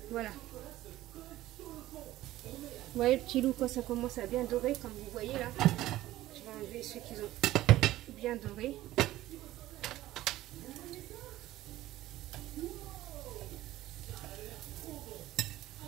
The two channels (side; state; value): left; quieter; 15.4 dB